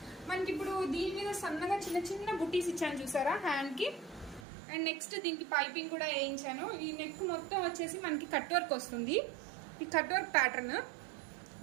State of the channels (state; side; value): drops out; left; at 4.5 s